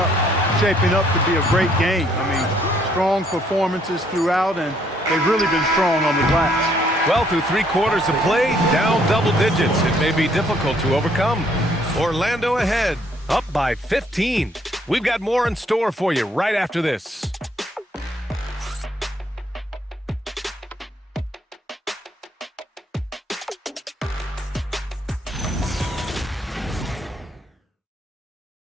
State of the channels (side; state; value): both; normal; correlation 0.67